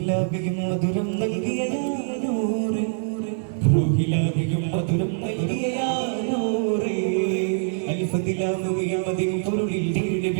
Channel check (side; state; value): left; silent; digital silence